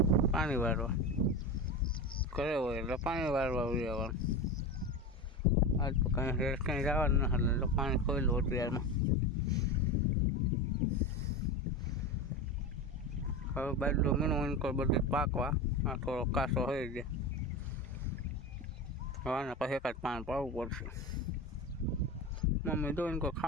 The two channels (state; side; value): normal; both; correlation 0.24